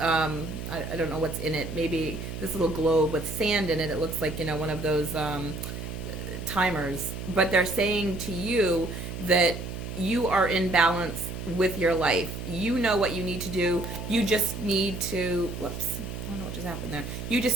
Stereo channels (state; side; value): noise; right; hum, 7 dB below the sound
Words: I don't know what's in it, maybe this little globe with sand in it. It looks like, one of those timers. But they're saying to you that you are in balance with your life. You know what you need to do. You just need to, whoops, I don't know what just happened there. You